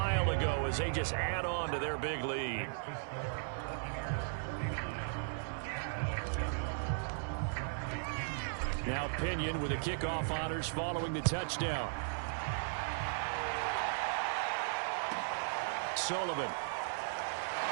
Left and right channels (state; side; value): silent; left; 53 dB below the other